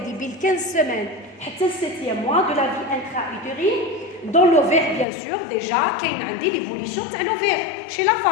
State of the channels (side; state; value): right; drops out; at 5.1 s